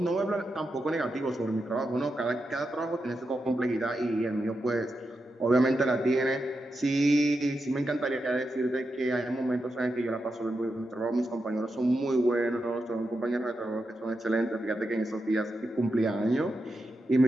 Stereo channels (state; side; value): normal; both; correlation 0.87